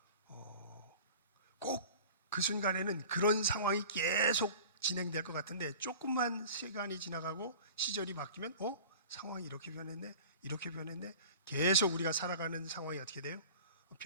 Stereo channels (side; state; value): both; inverted; correlation -0.41